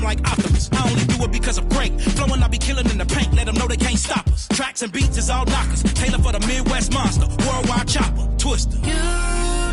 like Optimus. I only do it because I'm great. Flowing, I be killing in the paint. Let them know they can't stop us. Tracks and beats is all knockers. Taylor for the Midwest monster. Worldwide chopper. Twister. You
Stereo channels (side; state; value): both; identical; correlation 1.00